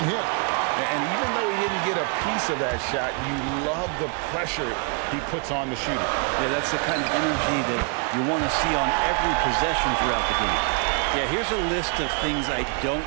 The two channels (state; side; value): quieter; left; 37.8 dB